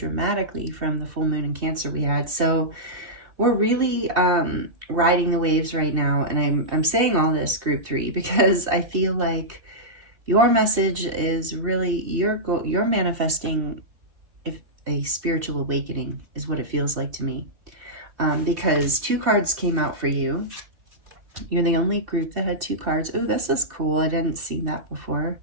from the full moon in Cancer we had. So we're really riding the waves right now, and I'm saying all this, Group 3, because I feel like your message is really you're manifesting a spiritual awakening is what it feels like to me, because 2 cards came out for you. You're the only group that had 2 cards. Oh, this is cool. I didn't see that before.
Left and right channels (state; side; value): late; left; 2.7 ms